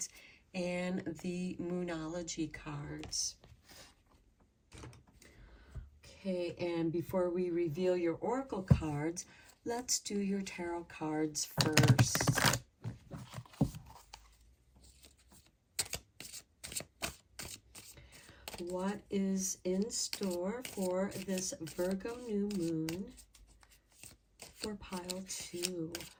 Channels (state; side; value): identical; both; correlation 1.00